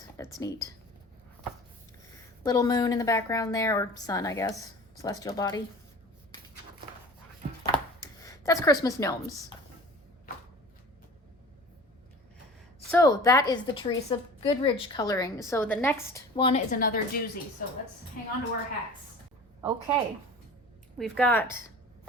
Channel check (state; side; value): normal; both; correlation 0.40